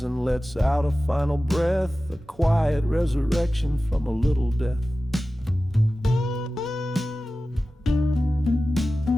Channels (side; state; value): both; normal; correlation 0.95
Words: and lets out a final breath, a quiet resurrection from a little death.